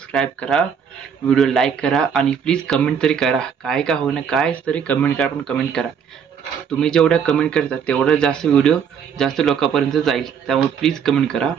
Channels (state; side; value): quieter; left; 7.3 dB